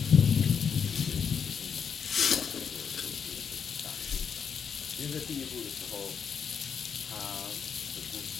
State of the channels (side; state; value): right; quieter; 6.8 dB